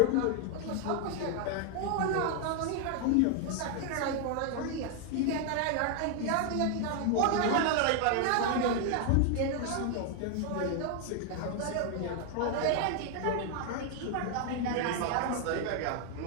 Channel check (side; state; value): both; different; correlation 0.00